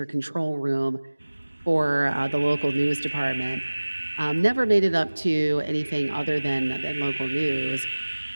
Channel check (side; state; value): both; inverted; correlation -1.00